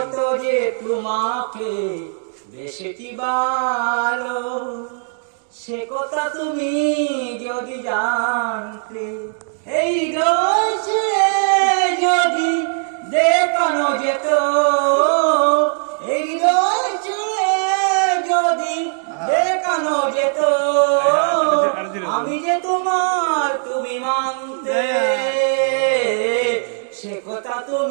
যে তোমাকে বেসেছি ভালো, সে কথা তুমি যদি জানতে। এই রয়েছে যদি দেখানো যেত, এই রয়েছে যদি দেখানো যেত, আমি যে তোমার তুমি মানতে। সে কথা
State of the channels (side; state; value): left; silent; 56 dB below the other